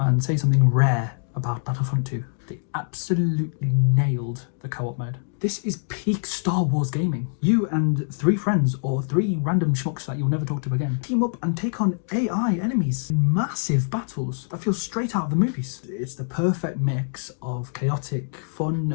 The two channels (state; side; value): silent; right; digital silence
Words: say something rare about Battlefront 2. They absolutely nailed the co-op mode. This is peak Star Wars gaming. You and 3 friends or 3 random schmucks that you'll never talk to again team up and take on AI enemies in massive battles that feel straight out of the movies. It's the perfect mix of chaotic